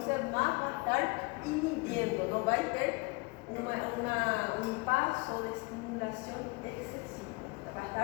más va a estar inhibiendo, no va a tener un paso de estimulación excesivo, va a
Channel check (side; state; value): right; quieter; 28.0 dB